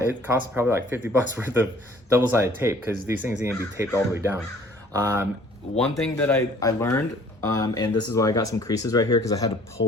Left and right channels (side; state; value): both; normal; correlation 0.55